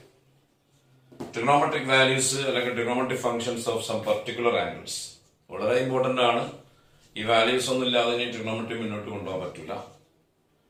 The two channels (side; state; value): both; identical; correlation 1.00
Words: ട്രിഗണോമെട്രിക് വാല്യൂസ് അല്ലെങ്കിൽ trigonometric functions of some particular angles. വളരെ ഇമ്പോർട്ടന്റ് ആണ്. ഈ വാല്യൂസ് ഒന്നും ഇല്ലാതെ ഇനി ട്രിഗണോമെട്രി മുന്നോട്ട് കൊണ്ടുപോകാൻ പറ്റില്ല.